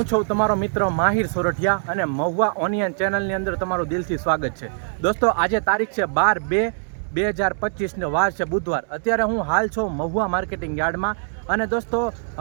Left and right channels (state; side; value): silent; left; 64 dB below the other